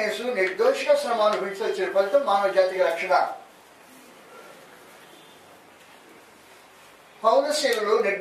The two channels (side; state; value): both; identical; correlation 1.00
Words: యేసు నిర్దోషిగా శ్రమ అనుభవించి వచ్చిన ఫలితం మానవ జాతికి రక్షణ. పౌలుశీలు